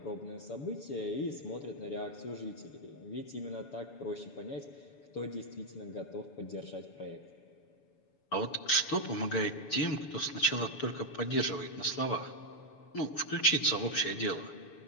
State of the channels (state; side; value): late; right; 7.0 ms